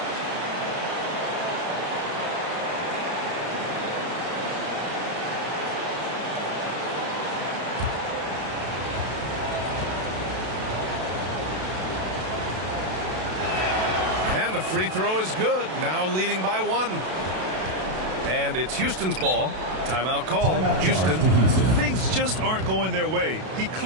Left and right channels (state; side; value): late; left; 32 ms